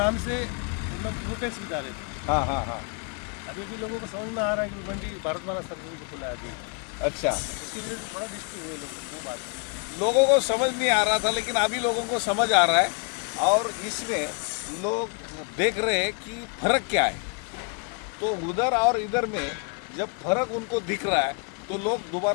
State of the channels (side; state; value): right; quieter; 37.7 dB